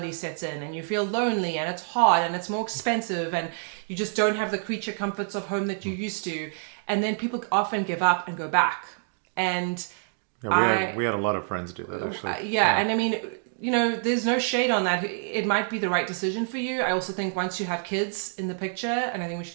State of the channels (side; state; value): left; silent; digital silence